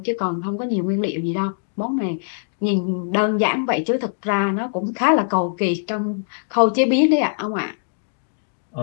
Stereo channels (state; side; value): silent; right; digital silence